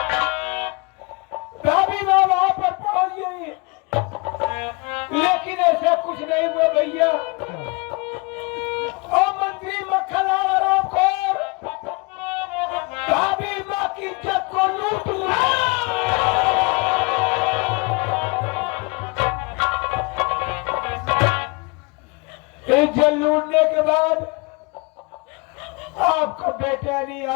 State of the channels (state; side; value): quieter; right; 28.4 dB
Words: भाभी मैं वहां पर पहुंच गई, लेकिन ऐसा कुछ नहीं हुआ भैया। ओ मंत्री मक्खनलाल आरामखोर, भाभी माँ की इज्जत को लूट लिया। इज्जत लूटने के बाद आपका बेटा नहीं,